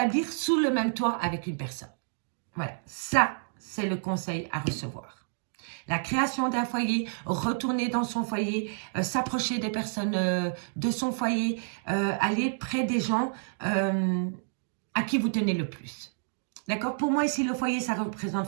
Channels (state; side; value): silent; left; digital silence